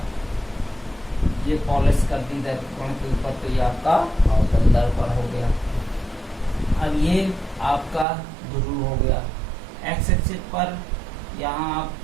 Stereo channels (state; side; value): drops out; left; at 8.1 s